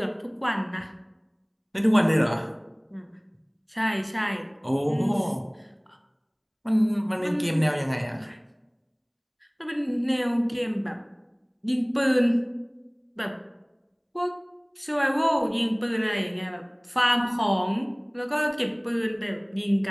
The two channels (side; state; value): both; identical; correlation 1.00